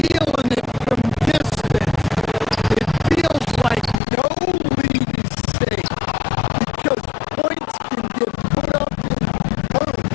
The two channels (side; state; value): right; drops out; at 4.0 s